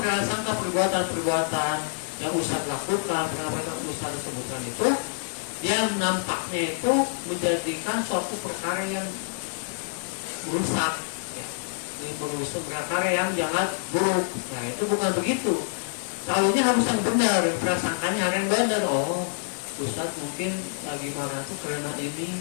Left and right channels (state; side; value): silent; right; digital silence